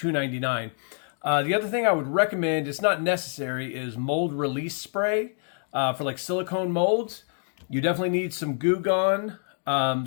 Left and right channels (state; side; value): silent; right; 58 dB below the other